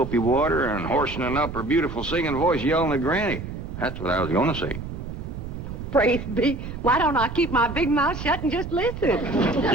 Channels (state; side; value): noise; right; rumble, 8 dB below the sound